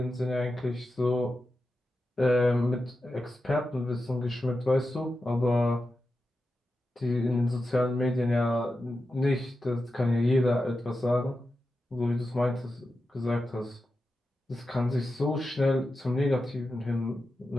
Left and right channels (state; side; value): normal; both; correlation 0.91